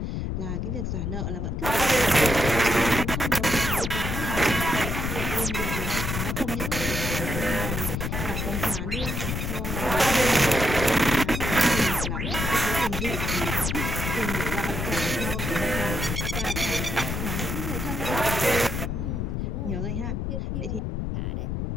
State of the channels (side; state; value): left; noise; rumble, 2 dB below the sound